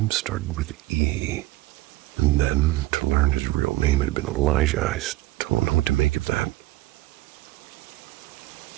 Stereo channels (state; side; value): quieter; left; 18.2 dB